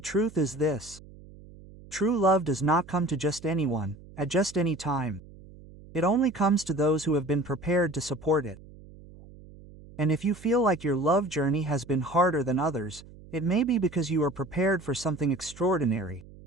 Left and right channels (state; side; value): noise; right; hum, 20 dB below the sound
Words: truth is this: true love does not come to just anyone, at just any time. It only comes to those who have been prepared to support it. And if you feel like your love journey has been harder than others, it may be because you are prepared for something extraordinary.